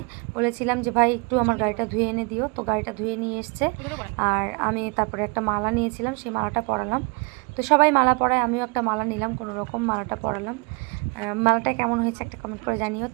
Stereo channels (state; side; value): quieter; left; 31.1 dB